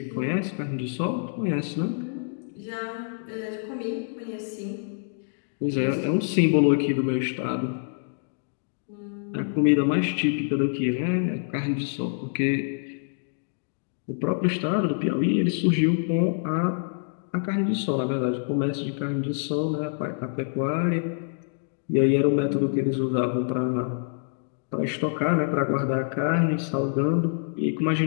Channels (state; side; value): silent; right; digital silence